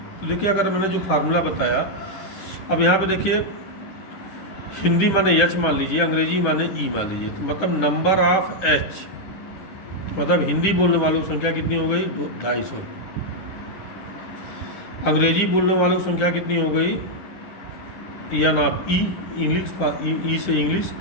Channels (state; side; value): late; right; 10 ms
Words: तो देखिए, अगर मैंने जो फार्मूला बताया, अब यहाँ पे देखिए, हिंदी माने एच मान लीजिए, अंग्रेजी माने ई मान लीजिए, तो मतलब नंबर ऑफ एच, मतलब हिंदी बोलने वालों की संख्या कितनी हो गई, 250। अंग्रेजी बोलने वालों की संख्या कितनी हो गई, एन ऑफ ई, इंग्लिश, ई से इंग्लिश,